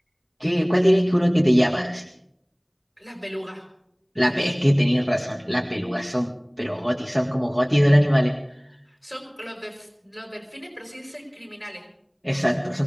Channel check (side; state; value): both; identical; correlation 1.00